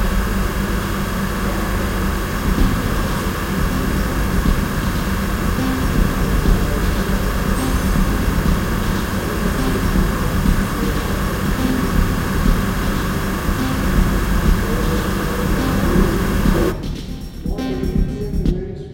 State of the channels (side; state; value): both; identical; correlation 1.00